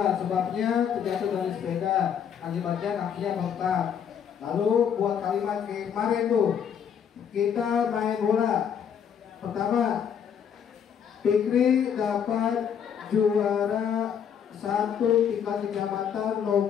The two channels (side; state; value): right; quieter; 8.0 dB